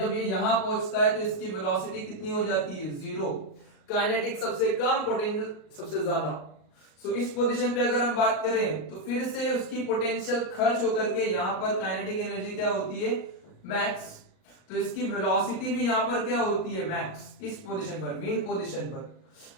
ये यहां पहुंचता है तो इसकी वेलोसिटी कितनी हो जाती है? 0। काइनेटिक सबसे कम, पोटेंशियल सबसे ज्यादा। सो इस पोजीशन पे अगर हम बात करें तो फिर से उसकी पोटेंशियल खर्च होकर के यहां पर काइनेटिक एनर्जी क्या होती है? मैक्स। तो इसकी वेलोसिटी भी यहां पर क्या होती है? मैक्स। इस पोजीशन पर, मेन पोजीशन पर,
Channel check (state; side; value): late; right; 38 ms